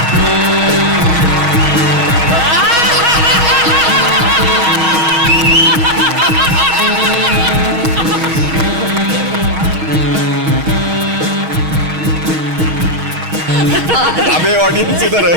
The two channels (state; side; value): late; left; 6.3 ms